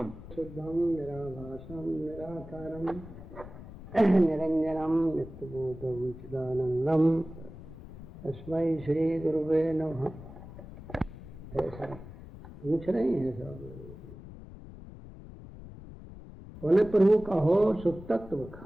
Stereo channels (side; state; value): left; noise; rumble, 15 dB below the sound